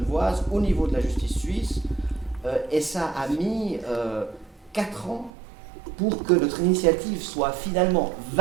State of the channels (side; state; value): left; drops out; at 5.3 s